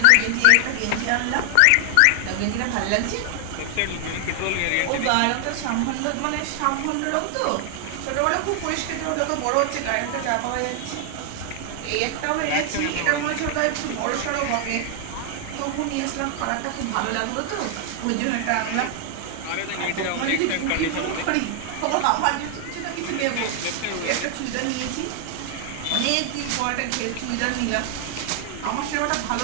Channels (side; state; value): both; different; correlation 0.00